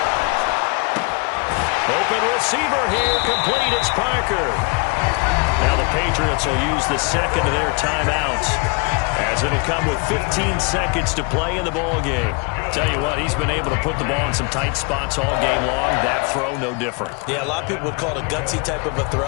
Open receiver here, complete. It's Parker. Now the Patriots will use the second of their timeouts, as it'll come with 15 seconds to play in the ball game. Tell you what, he's been able to put the ball in some tight spots all game long. That throw, no different. Yeah, a lot of people would call it a gutsy type of a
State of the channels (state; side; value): quieter; right; 31.9 dB